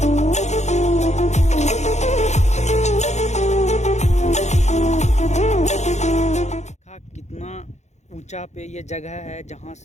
कितना ऊंचा पे ये जगह है जहाँ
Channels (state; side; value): late; right; 0.33 ms